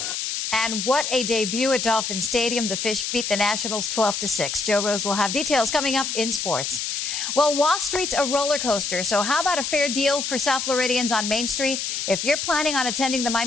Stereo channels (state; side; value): noise; left; hiss, 3 dB below the sound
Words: And what a debut at Dolphin Stadium. The Fish beat the Nationals 12-6. Joe Rose will have details coming up in sports. Well, Wall Street's a roller coaster, so how about a fair deal for South Floridians on Main Street? If you're planning on attending the